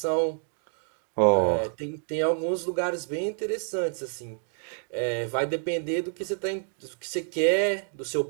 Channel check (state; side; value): silent; left; 59 dB below the other